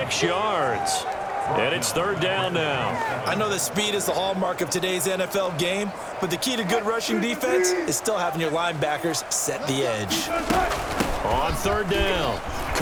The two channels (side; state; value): both; identical; correlation 1.00